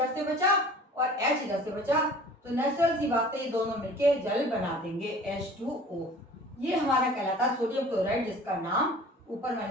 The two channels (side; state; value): both; normal; correlation 0.45